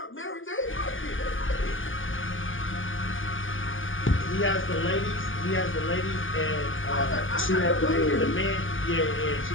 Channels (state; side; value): late; right; 0.58 ms